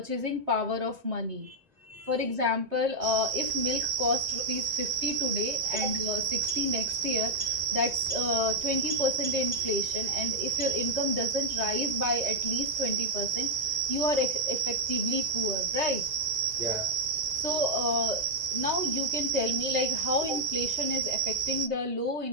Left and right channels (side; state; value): left; late; 2.0 ms